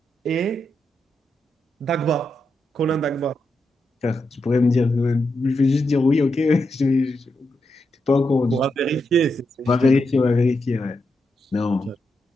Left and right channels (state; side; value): normal; both; correlation 0.84